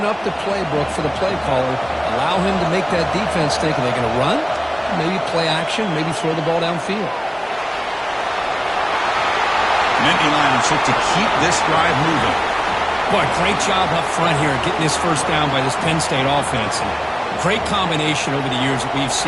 up the playbook for the play caller, allow him to make that defense think, are they going to run? Maybe play action, maybe throw the ball downfield. Nittany Lions look to keep this drive moving. Boy, great job up front here getting this first down by this Penn State offense. And great combination over the years that we've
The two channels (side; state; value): both; identical; correlation 1.00